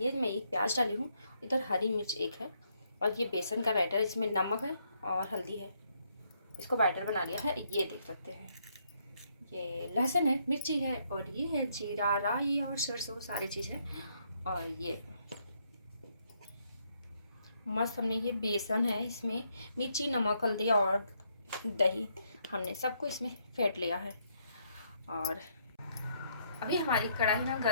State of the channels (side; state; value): both; inverted; correlation -0.74